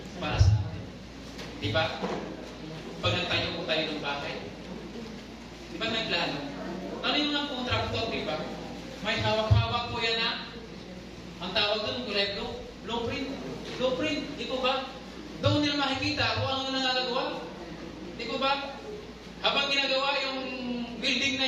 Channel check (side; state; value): both; identical; correlation 1.00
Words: para sa atin. Diba? Pag nagtayo po tayo ng bahay, diba may plano? Ano yung mga kontraktor, diba? May hawak-hawak po yan na. Ang tawag doon, blueprint. Blueprint, di ko ba? Doon nila makikita kung ano nangagagawa. Di ko ba? Habang ginagawa yung building na